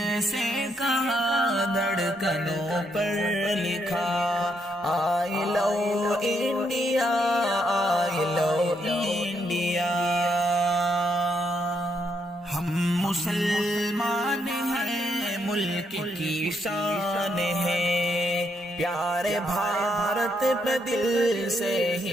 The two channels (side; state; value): both; normal; correlation 0.76